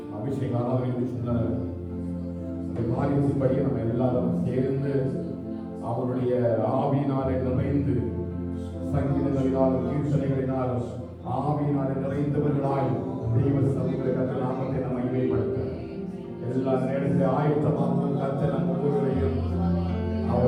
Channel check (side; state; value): both; identical; correlation 1.00